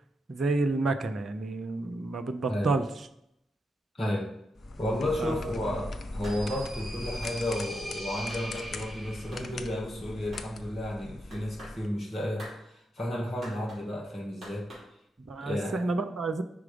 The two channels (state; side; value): normal; both; correlation 0.84